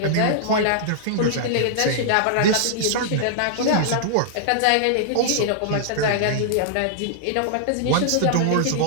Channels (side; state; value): both; different; correlation -0.01